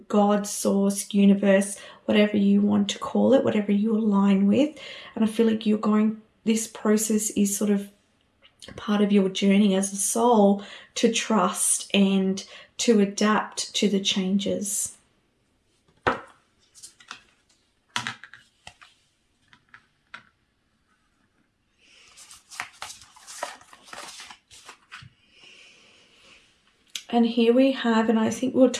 God, source, universe, whatever you want to call it, whatever you align with. And I feel like this process is sort of part of your journey as a soul to trust and to adapt to the changes. And here we have, and I think we're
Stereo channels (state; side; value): identical; both; correlation 1.00